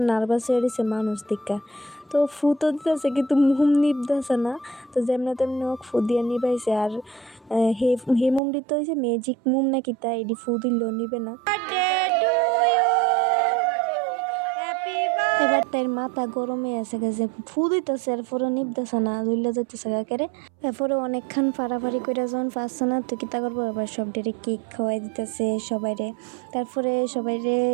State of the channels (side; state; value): left; drops out; at 8.4 s